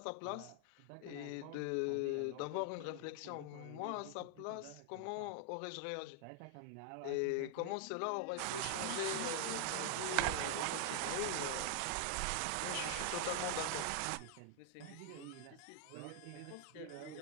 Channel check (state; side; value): different; both; correlation 0.00